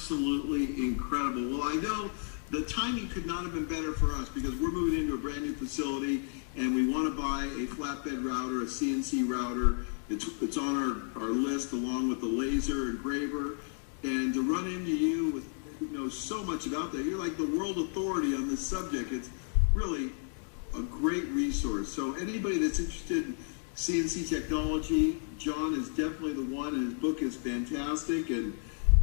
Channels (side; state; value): right; silent; 56 dB below the other